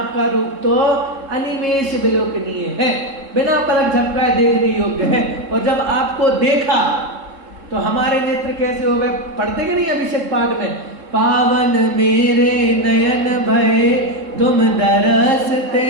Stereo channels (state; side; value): late; left; 3.7 ms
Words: रूप तो अनिमेष विलोकनीय है, बिना पलक झपकाए देखने योग्य है। और जब आपको देखा तो हमारे नेत्र कैसे हो गए? पढ़ते कि नहीं अभिषेक पाठ में, पावन मेरे नयन भय तुम दरसते,